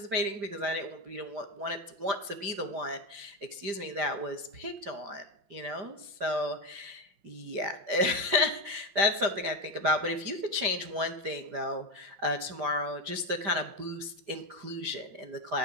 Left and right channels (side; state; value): left; late; 5.1 ms